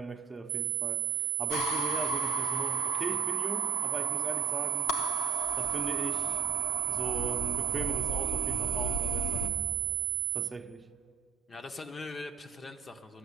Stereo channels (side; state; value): left; quieter; 6.4 dB